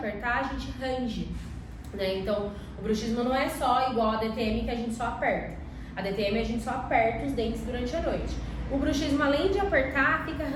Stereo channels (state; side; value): identical; both; correlation 1.00